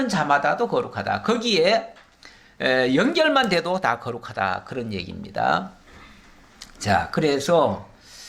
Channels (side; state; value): both; identical; correlation 1.00